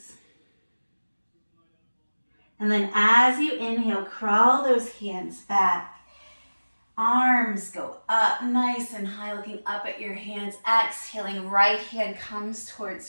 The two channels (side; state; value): both; inverted; correlation -1.00